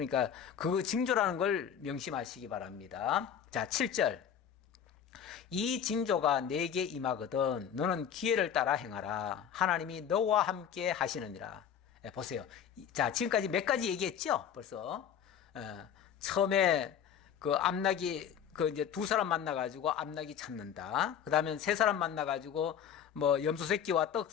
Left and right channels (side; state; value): right; quieter; 8.6 dB